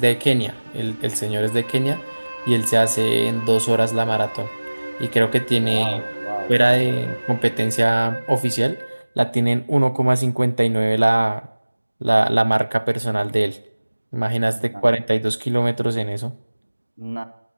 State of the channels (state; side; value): inverted; both; correlation -1.00